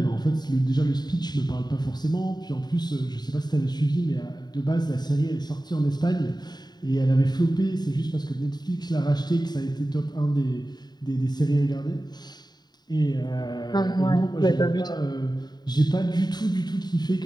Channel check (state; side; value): late; right; 0.20 ms